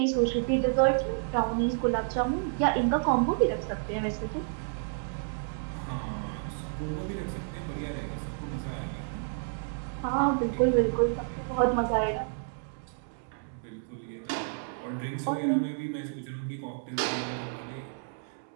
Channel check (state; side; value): silent; left; digital silence